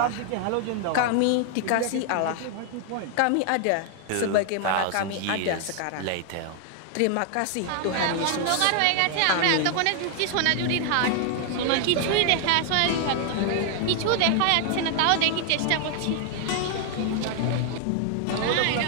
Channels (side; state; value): both; different; correlation 0.00